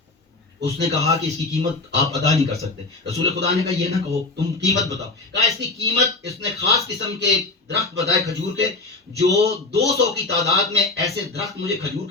اس نے کہا کہ اس کی قیمت آپ ادا نہیں کر سکتے. رسول خدا نے کہا یہ نہ کہو, تم قیمت بتاؤ. کہا اس کی قیمت, اس نے خاص قسم کے درخت بتائے کھجور کے, جو 200 کی تعداد میں ایسے درخت مجھے کھجور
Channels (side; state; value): right; quieter; 3.4 dB